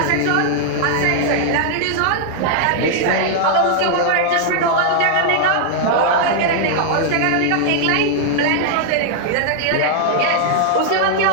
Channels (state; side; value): different; both; correlation -0.01